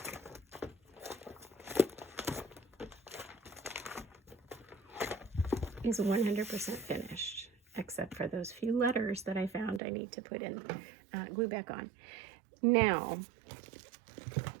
is 100% finished, except for those few letters that I found I need to put in glue back on. Now,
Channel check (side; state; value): left; drops out; at 9.8 s